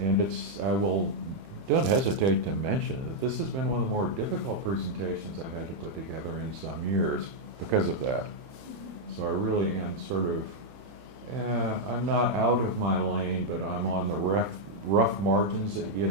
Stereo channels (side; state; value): left; late; 29 ms